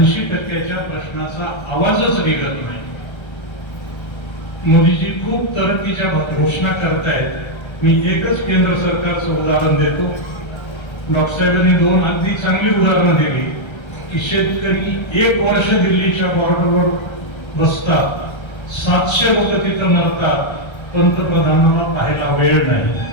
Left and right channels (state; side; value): late; right; 1.3 ms